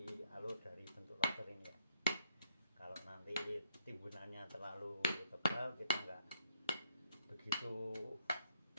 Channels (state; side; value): inverted; both; correlation -0.73